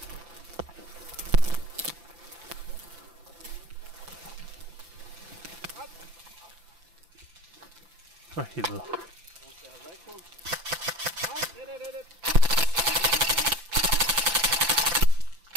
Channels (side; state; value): left; late; 5.9 ms